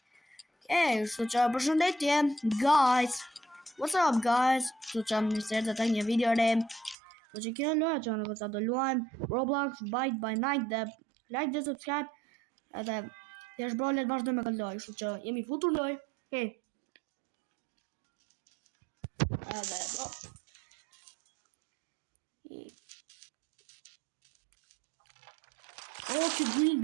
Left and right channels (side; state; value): left; drops out; at 7.0 s